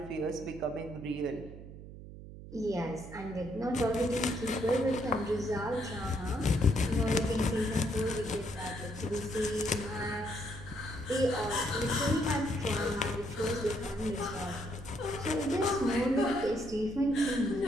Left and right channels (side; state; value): right; noise; hum, 14 dB below the sound